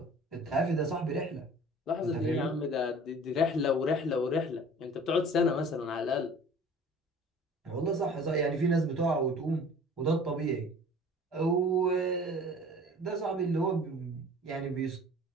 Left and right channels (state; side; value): normal; both; correlation 0.46